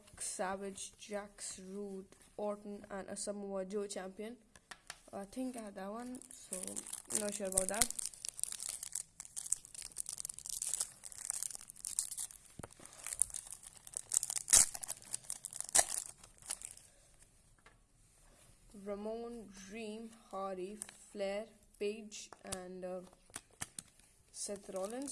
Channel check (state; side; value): identical; both; correlation 1.00